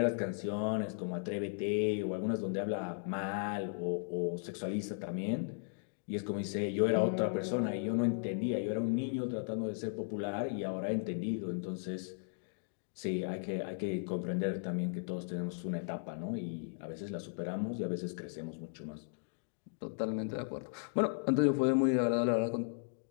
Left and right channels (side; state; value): right; silent; digital silence